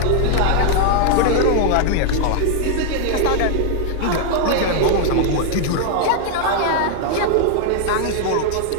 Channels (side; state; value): both; different; correlation 0.00